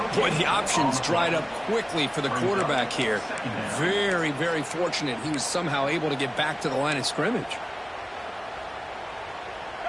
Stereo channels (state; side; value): identical; both; correlation 1.00